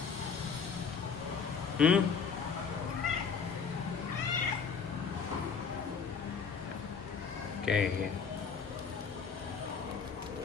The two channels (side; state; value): right; quieter; 5.9 dB